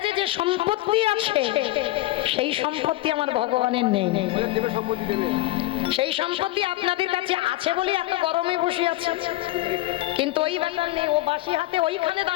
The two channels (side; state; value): right; quieter; 17.5 dB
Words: যে সম্পত্তি আছে সেই সম্পত্তি আমার ভগবানের নেই। সেই সম্পত্তি আপনাদের কাছে আছে বলে এত গরমে বসে আছে, কিন্তু ওই ব্যাপার নেই। ও বাসি হাতে ওইখানে